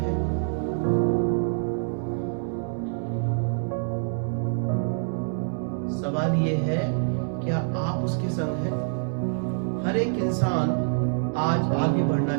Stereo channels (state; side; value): silent; left; 61 dB below the other